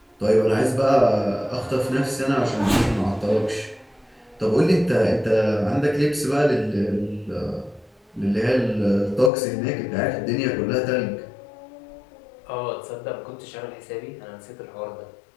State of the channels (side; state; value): right; drops out; at 9.3 s